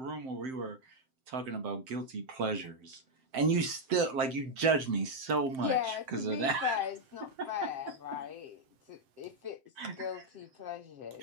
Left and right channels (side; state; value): left; late; 7.7 ms